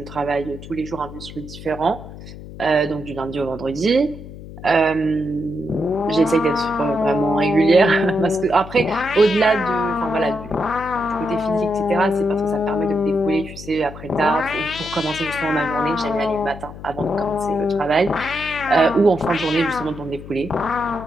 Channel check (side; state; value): left; noise; hum, 14 dB below the sound